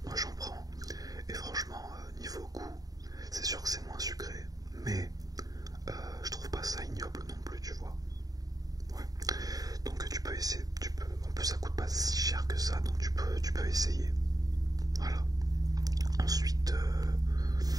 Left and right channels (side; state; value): left; late; 0.18 ms